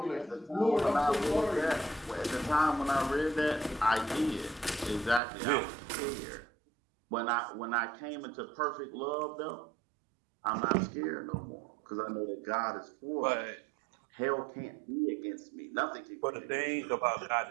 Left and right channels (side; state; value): left; drops out; at 5.2 s